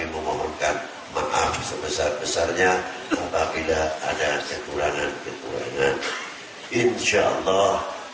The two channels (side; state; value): both; identical; correlation 1.00